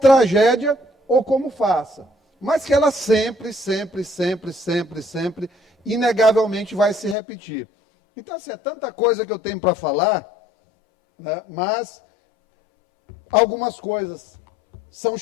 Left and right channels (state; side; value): drops out; right; at 7.2 s